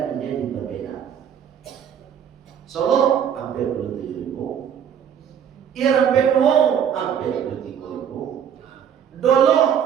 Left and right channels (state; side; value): quieter; left; 8.6 dB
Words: menjadi berbeda. Solo hampir 27.000, hampir 23.000, Dolo